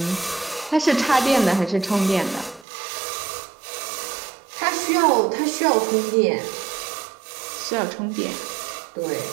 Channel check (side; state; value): left; drops out; at 2.7 s